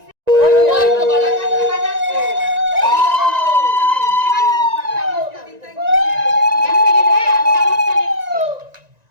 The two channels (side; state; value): left; late; 1.9 ms